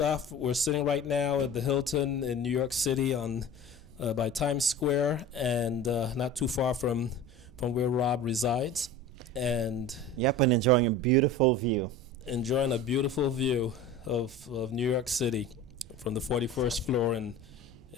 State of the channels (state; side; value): normal; both; correlation 0.36